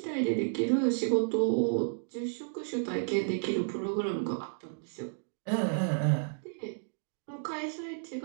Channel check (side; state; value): left; silent; digital silence